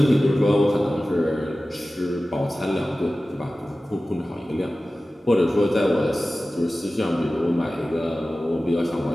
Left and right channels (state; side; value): normal; both; correlation 0.96